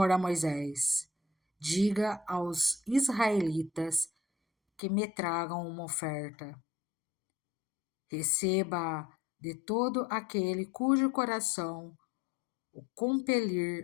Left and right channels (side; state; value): right; drops out; at 4.8 s